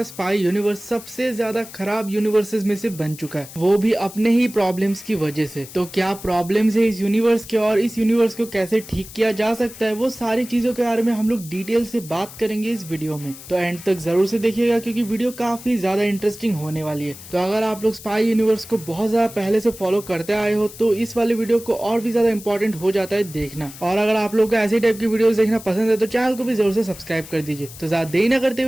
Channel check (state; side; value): noise; left; hiss, 16 dB below the sound